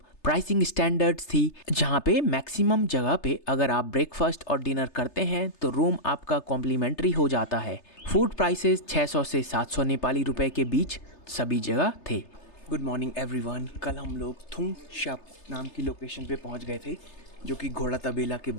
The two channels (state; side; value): late; right; 3.3 ms